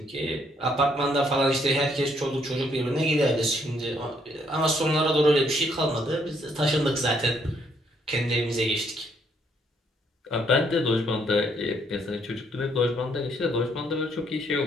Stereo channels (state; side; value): normal; both; correlation 0.70